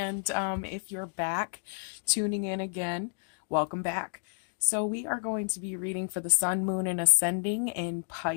if you're back tuning in again, welcome back. So we are going to be reading for the Sun, Moon, and Ascending in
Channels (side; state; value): right; silent; digital silence